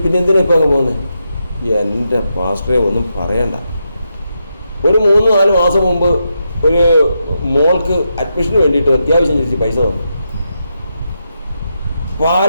പിന്നെ എന്തിനാ ഇപ്പോൾ അങ്ങ് പോകുന്നത്? എൻ്റെ പാസ്റ്ററെ ഒന്നും പറയണ്ട. ഒരു 3-4 മാസം മുമ്പ് ഒരു മോൾക്ക് അഡ്മിഷന് വേണ്ടിയിട്ട് അത്യാവശ്യം ചോദിച്ച് പൈസ തന്നു.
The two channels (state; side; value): inverted; both; correlation -0.84